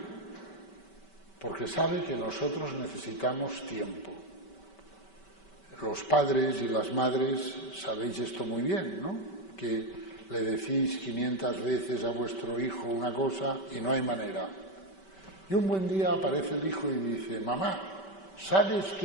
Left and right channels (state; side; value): late; right; 5.2 ms